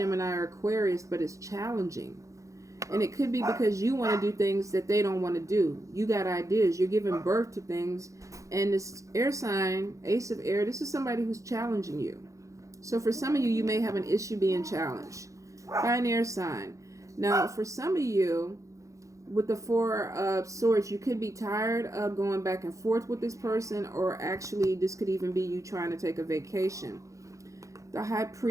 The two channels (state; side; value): late; left; 0.15 ms